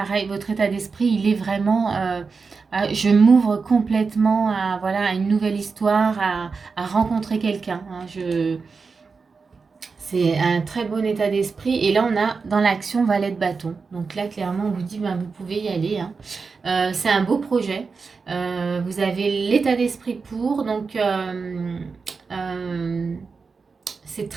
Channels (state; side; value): quieter; left; 4.8 dB